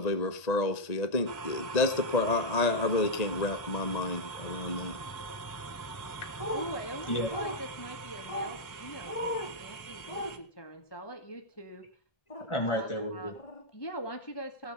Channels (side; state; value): right; late; 1.8 ms